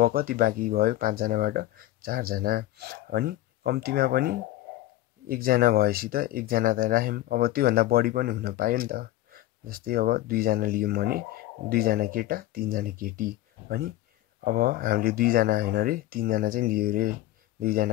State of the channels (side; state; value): right; quieter; 15.5 dB